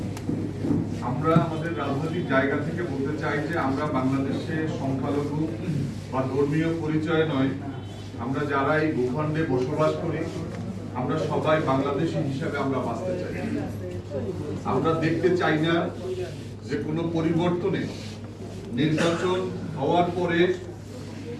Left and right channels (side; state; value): both; identical; correlation 1.00